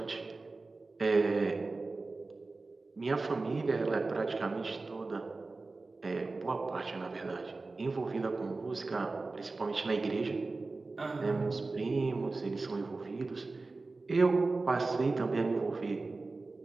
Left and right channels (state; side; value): quieter; left; 3.6 dB